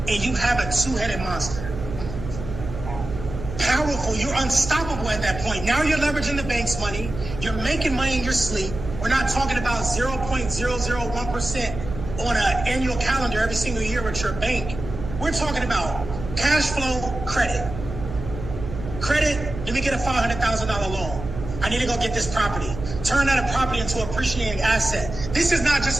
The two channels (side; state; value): right; noise; hum, 9 dB below the sound